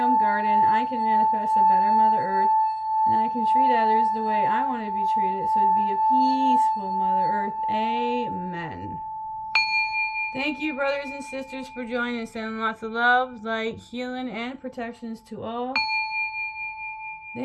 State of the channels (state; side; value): identical; both; correlation 1.00